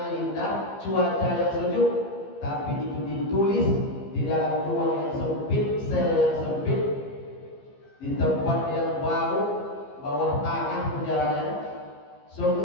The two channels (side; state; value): right; late; 15 ms